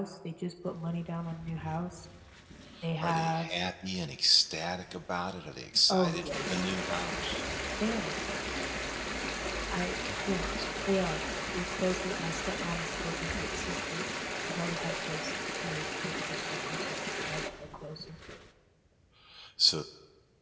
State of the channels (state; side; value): identical; both; correlation 1.00